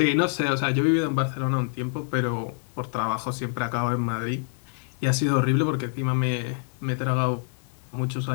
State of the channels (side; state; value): right; silent; 61 dB below the other